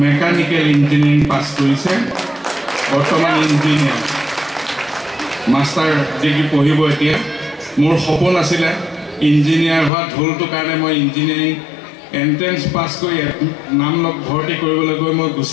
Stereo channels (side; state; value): right; drops out; at 9.9 s